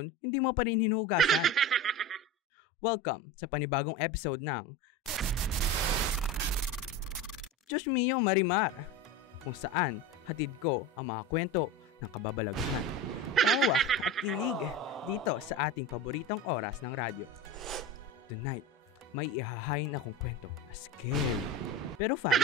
hindi mo pa rin hinuhugasan. Welcome sa panibagong episode ng Diyos Mio Marimar, kung saan hatid ko ang mga kwento ng kababalaghan, tawa at kilig dito sa ating paboritong oras ng radyo. Tonight, may ihahain akong kwento na scary, pero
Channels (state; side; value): normal; both; correlation 0.27